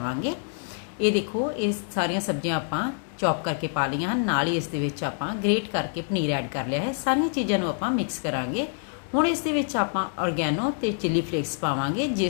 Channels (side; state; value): right; silent; 60 dB below the other